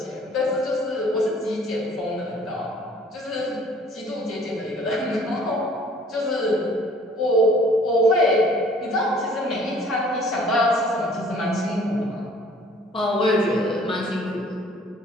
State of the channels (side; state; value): both; normal; correlation 0.55